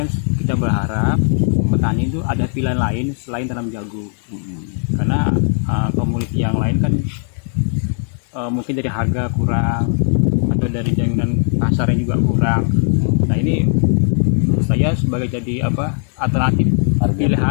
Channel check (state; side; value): silent; right; 59 dB below the other